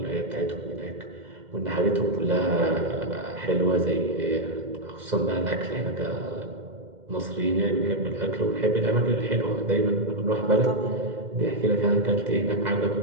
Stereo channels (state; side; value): late; left; 2.1 ms